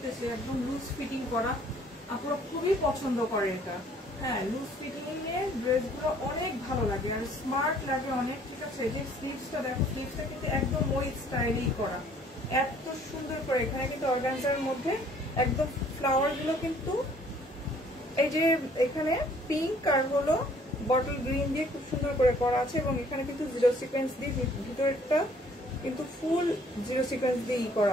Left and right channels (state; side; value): normal; both; correlation 0.59